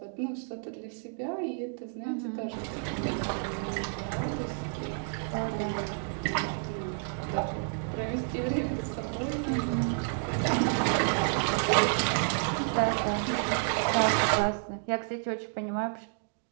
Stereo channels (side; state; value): left; silent; 58 dB below the other